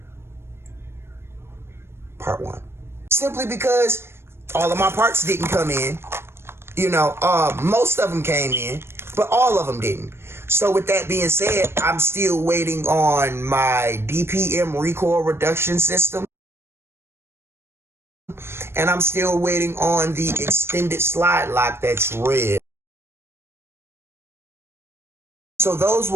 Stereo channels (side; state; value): left; late; 0.12 ms